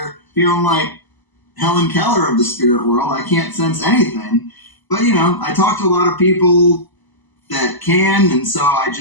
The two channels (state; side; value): late; right; 1.0 ms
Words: feeling like Helen Keller of the spirit world. I can't sense anything. But, I talk to a lot of people that can, and so I